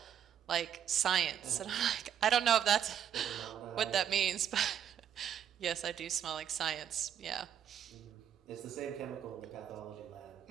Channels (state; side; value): quieter; left; 9.3 dB